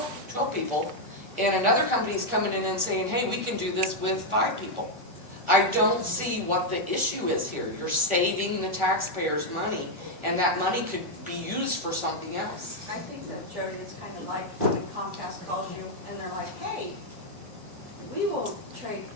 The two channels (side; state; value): left; late; 3.4 ms